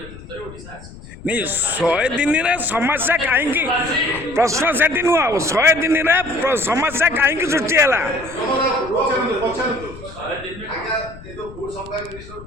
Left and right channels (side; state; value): left; noise; rumble, 16 dB below the sound